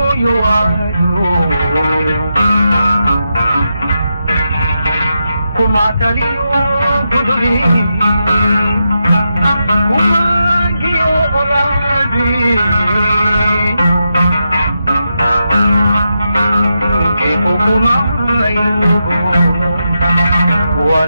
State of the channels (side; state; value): both; inverted; correlation -0.86